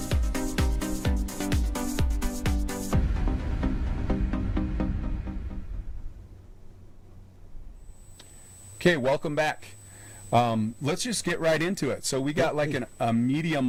Okay, welcome back. Let's just get right into it. So we got like a media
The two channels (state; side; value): identical; both; correlation 1.00